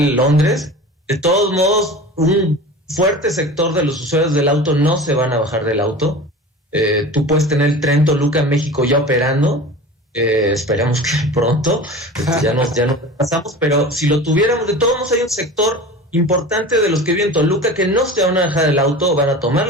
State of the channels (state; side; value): normal; both; correlation 0.35